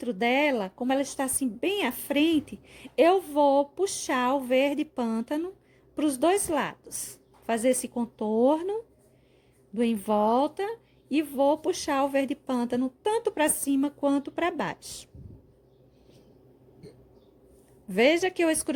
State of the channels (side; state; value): both; identical; correlation 1.00